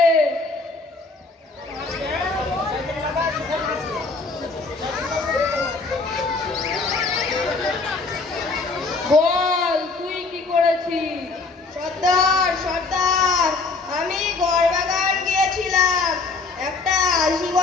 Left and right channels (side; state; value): right; quieter; 3.9 dB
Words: বল তুই কি করেছিস? সর্দার সর্দার, আমি গড়বাগান গিয়েছিলাম। একটা 80